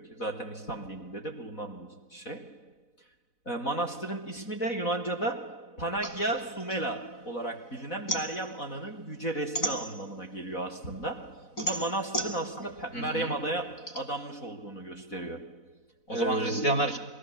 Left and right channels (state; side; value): late; right; 4.0 ms